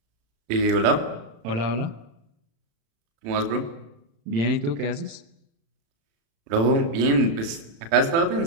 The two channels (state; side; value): late; left; 35 ms